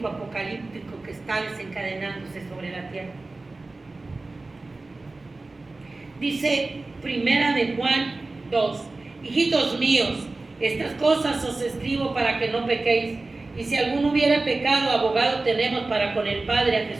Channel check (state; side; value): quieter; left; 3.3 dB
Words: apocalíptico que está desencadenándose sobre la tierra. Dice Primera de Juan 2: hijitos míos, estas cosas os escribo para que no pequéis. Y si alguno hubiera pecado, abogado tenemos para con el Padre, a